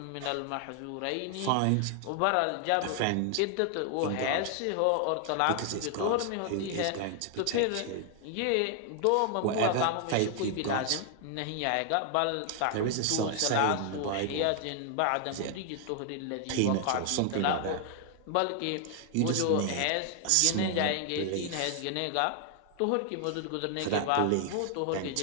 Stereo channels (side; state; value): both; different; correlation 0.00